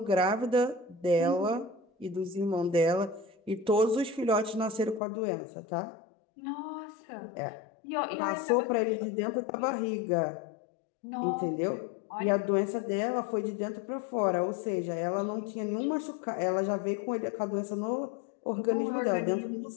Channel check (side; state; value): right; drops out; at 5.0 s